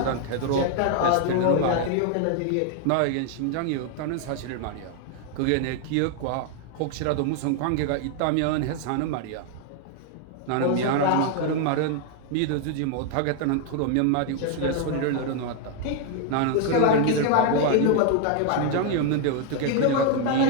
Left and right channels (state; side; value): different; both; correlation 0.00